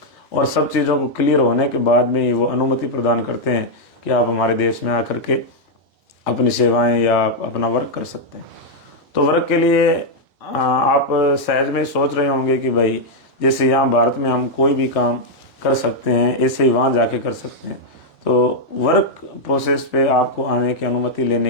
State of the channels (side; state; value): both; normal; correlation -0.03